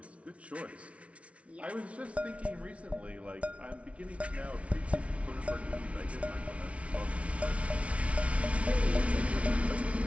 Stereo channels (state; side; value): late; left; 0.063 ms